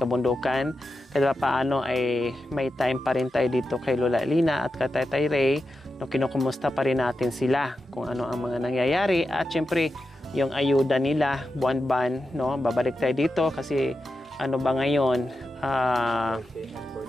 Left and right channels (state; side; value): normal; both; correlation 0.90